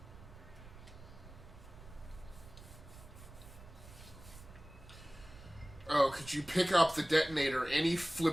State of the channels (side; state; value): right; noise; rumble, 17 dB below the sound